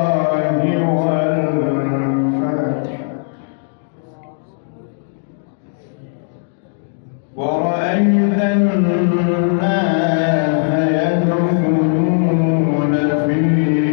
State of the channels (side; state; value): right; silent; digital silence